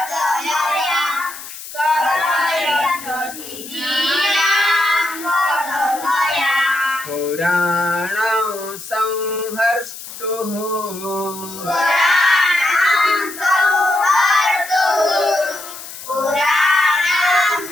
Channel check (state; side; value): noise; left; hiss, 13 dB below the sound